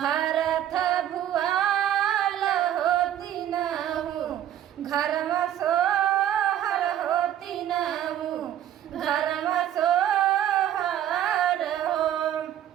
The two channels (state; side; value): quieter; left; 11.1 dB